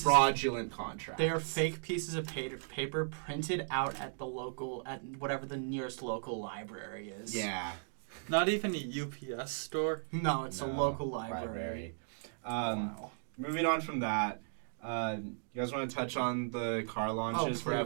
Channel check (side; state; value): left; silent; digital silence